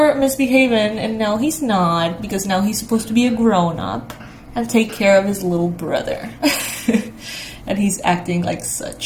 misbehaving, and now he's not, because now he's supposed to be a grown-up and take care of his little brother. and he's acting like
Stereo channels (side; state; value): both; identical; correlation 1.00